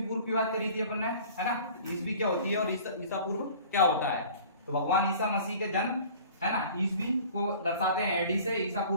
की बात करी थी अपन ने, है ना। ईसवी क्या होती है और ईसा पूर्व क्या होता है। तो भगवान ईसा मसीह के जन्म, है ना, ईसवी को दर्शाते हैं एडी से, ईसा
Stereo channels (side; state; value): both; inverted; correlation -0.46